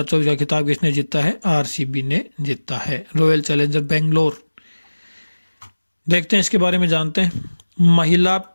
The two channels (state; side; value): inverted; both; correlation -1.00